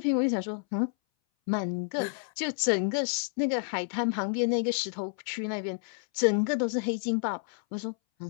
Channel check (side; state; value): right; silent; 58 dB below the other